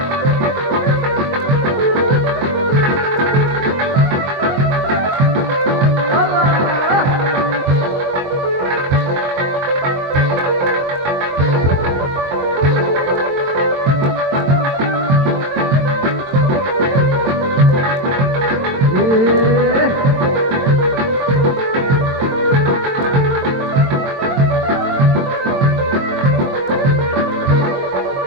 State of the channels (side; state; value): left; late; 22 ms